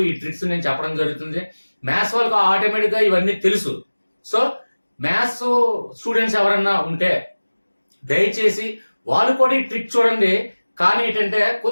ఈ ట్రిక్స్ నేను చెప్పడం జరుగుతుంది. మ్యాథ్స్ వాళ్ళకి ఆటోమేటిక్ గా ఇవన్నీ తెలుసు. సో మ్యాథ్స్ స్టూడెంట్స్ ఎవరన్నా ఉంటే దయచేసి వాళ్ళు కూడా ఈ ట్రిక్ చూడండి. కానీ ఏంటంటే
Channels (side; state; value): both; inverted; correlation -1.00